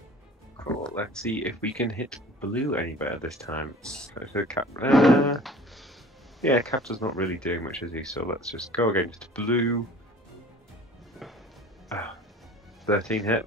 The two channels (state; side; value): normal; both; correlation 0.45